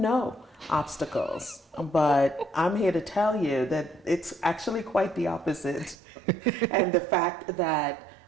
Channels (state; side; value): drops out; left; at 6.0 s